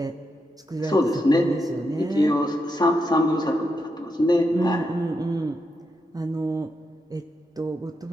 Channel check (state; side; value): normal; both; correlation 0.84